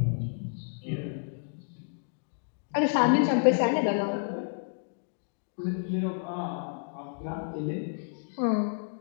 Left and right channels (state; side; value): silent; right; digital silence